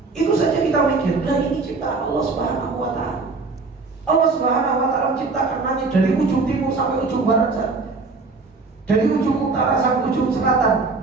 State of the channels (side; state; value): left; quieter; 4.0 dB